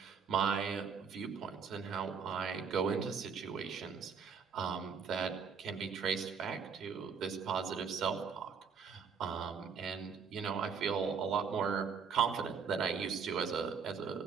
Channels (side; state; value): left; quieter; 6.1 dB